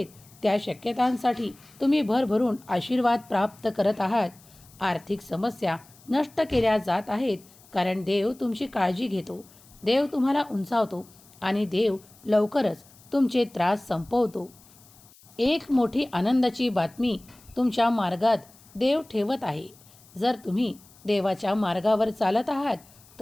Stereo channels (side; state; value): left; noise; hiss, 26 dB below the sound